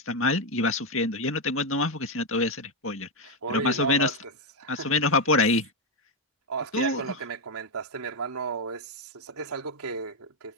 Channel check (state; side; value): normal; both; correlation 0.05